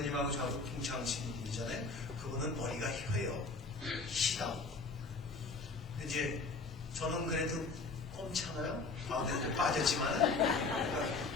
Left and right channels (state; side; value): quieter; right; 3.9 dB